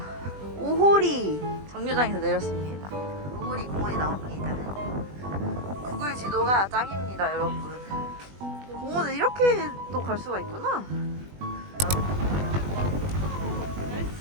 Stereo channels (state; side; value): late; left; 20 ms